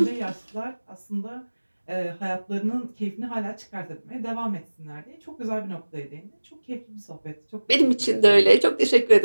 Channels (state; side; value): inverted; both; correlation -1.00